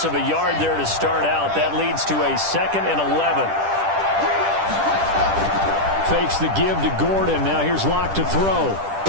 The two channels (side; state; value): left; late; 10 ms